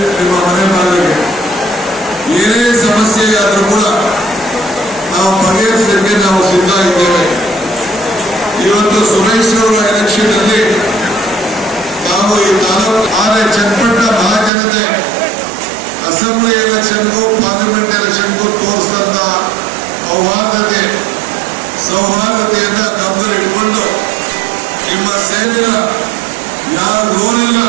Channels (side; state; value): left; drops out; at 14.5 s